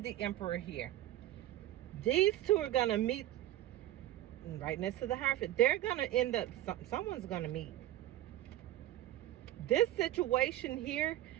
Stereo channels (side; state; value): left; quieter; 14.0 dB